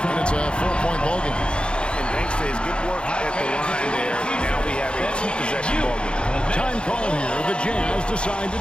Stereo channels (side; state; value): right; late; 0.054 ms